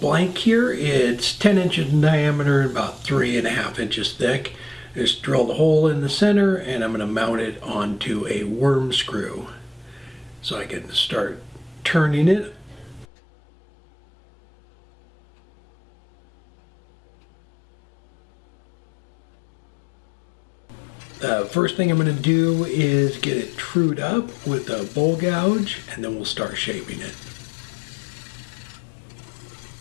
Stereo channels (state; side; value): drops out; right; at 13.1 s